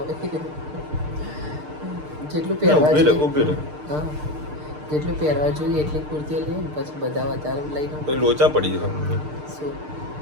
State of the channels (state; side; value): late; left; 6.6 ms